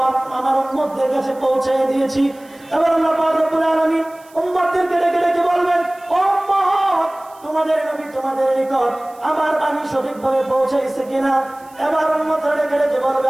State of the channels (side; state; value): right; noise; hiss, 27 dB below the sound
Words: আমার উম্মতদের কাছে পৌঁছে দিয়েছি। এবার আল্লাহ পাক রব্বুল আলামিন উম্মতদেরকে ডেকে ডেকে বলবেন, ও উম্মত, তোমাদের নবী তোমাদের নিকট আমার বাণী সঠিকভাবে পৌঁছাইছে কিনা? এবার উম্মতরা ডেকে ডেকে বলবে,